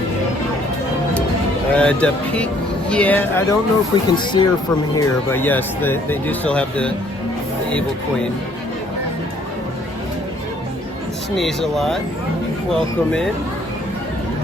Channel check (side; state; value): both; normal; correlation 0.62